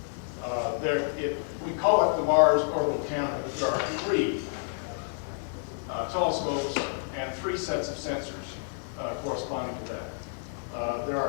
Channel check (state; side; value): silent; right; 58 dB below the other